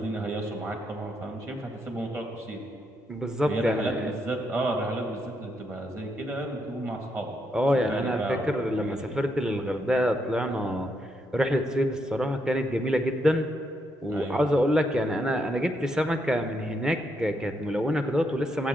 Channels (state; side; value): normal; both; correlation 0.79